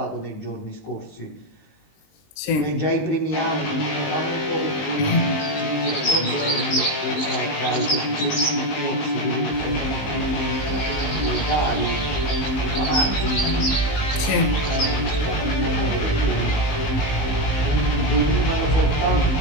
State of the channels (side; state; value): right; late; 19 ms